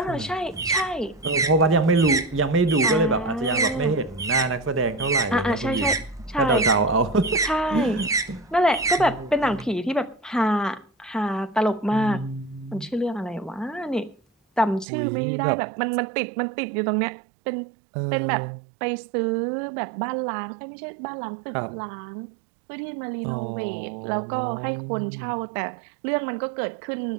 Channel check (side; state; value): left; drops out; at 14.9 s